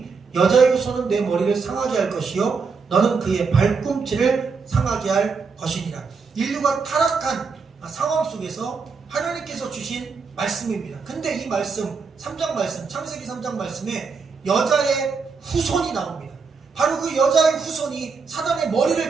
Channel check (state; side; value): quieter; left; 5.1 dB